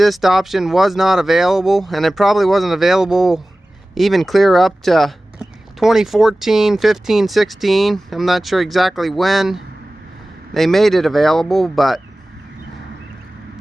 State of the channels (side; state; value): both; normal; correlation 0.97